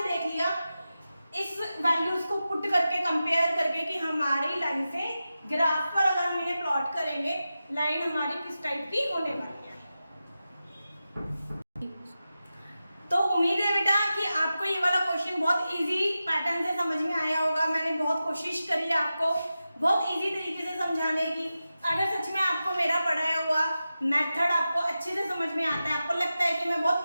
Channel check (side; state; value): both; inverted; correlation -0.93